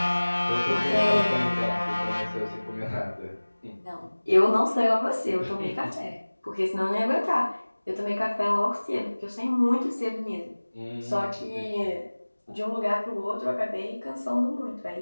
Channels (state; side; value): inverted; both; correlation -1.00